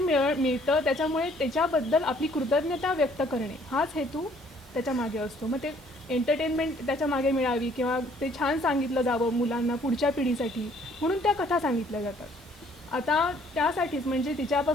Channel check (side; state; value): both; normal; correlation 0.61